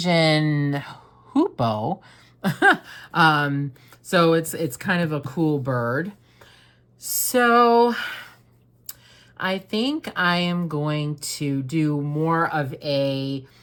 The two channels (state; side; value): identical; both; correlation 1.00